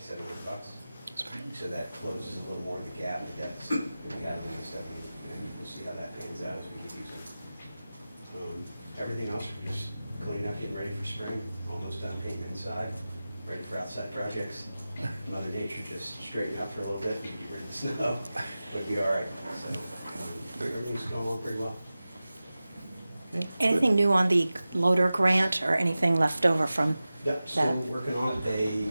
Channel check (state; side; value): inverted; both; correlation -0.96